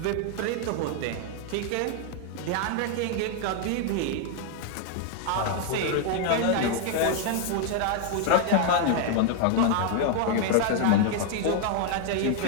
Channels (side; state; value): both; different; correlation 0.00